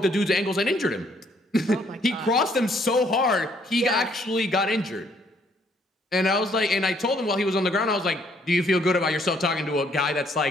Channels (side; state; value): both; normal; correlation 0.66